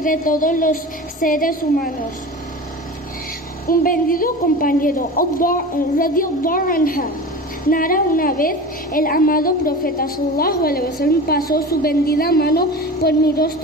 todos los seres humanos. Un bendito compañero, radiyallahu anha, narra: una vez el amado profeta sallallahu alaihi wasallam pasó su bendita mano por mi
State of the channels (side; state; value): both; normal; correlation 0.32